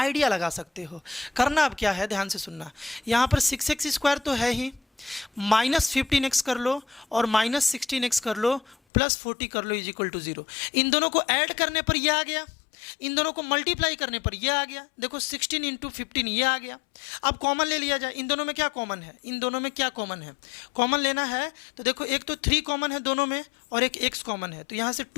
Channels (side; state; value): right; drops out; at 8.8 s